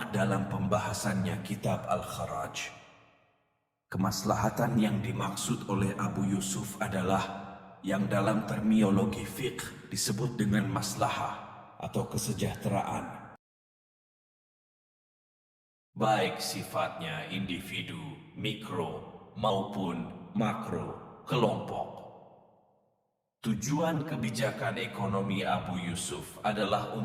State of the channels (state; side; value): identical; both; correlation 1.00